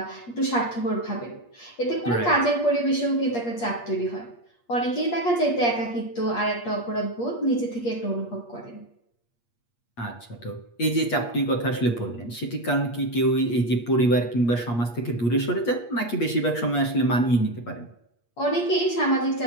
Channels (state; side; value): late; right; 8.5 ms